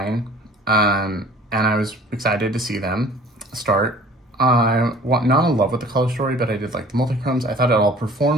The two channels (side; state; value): both; normal; correlation 0.48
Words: and I was excited to see them start. I'm not in love with the color story, but I did like the multi-chromes. I thought it all